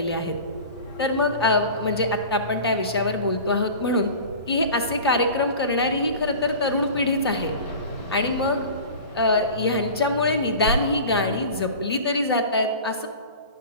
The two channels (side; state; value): both; inverted; correlation -0.37